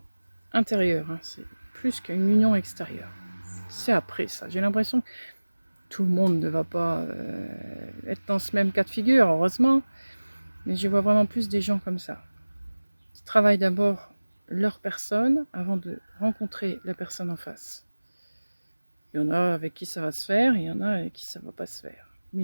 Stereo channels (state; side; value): inverted; both; correlation -1.00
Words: intérieure. Hein. C'est plus qu'une union extérieure. C'est après ça. J'ai l'impression que tout le monde ne va pas être dans ce même cas de figure, heureusement. Mais je vois vraiment plus des gens comme ça. Qui travaillent d'abord leur personne avant de rencontrer la personne en face. Il y en a avec qui ça va se faire, il y en a avec qui ça ne va pas se faire. Mais